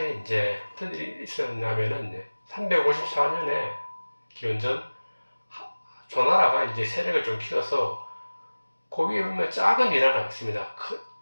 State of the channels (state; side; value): inverted; both; correlation -1.00